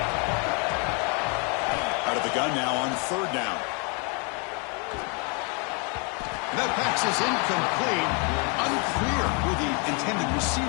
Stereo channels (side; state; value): right; quieter; 35.1 dB